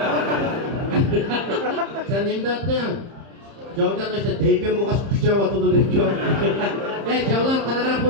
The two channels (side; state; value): left; late; 30 ms